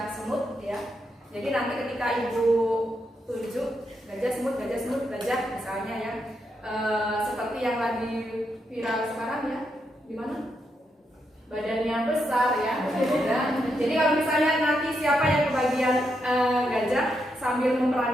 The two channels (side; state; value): both; normal; correlation 0.82